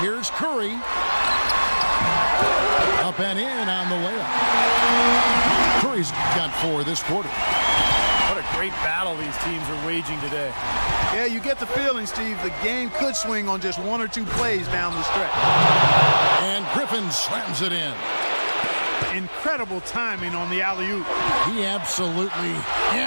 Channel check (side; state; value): both; inverted; correlation -1.00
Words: Curry. Up and in on the layup. Curry's got 4 this quarter. What a great battle these teams are waging today. Yeah, you get the feeling, Steve, the game could swing on just 1 or 2 plays down the stretch. And Griffin slams it in. Incredible timing on the alley-oop. He absolutely